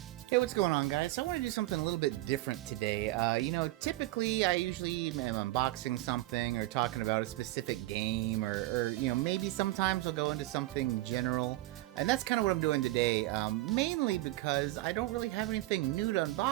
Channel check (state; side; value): quieter; left; 18.0 dB